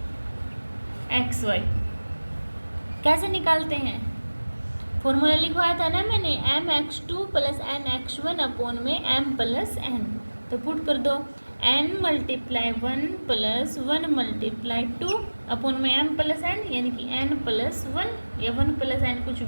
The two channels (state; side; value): inverted; both; correlation -1.00